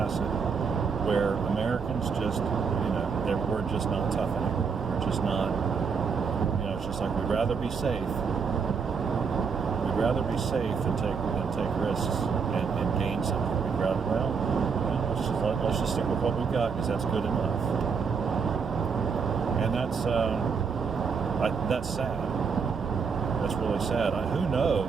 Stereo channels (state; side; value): quieter; left; 5.7 dB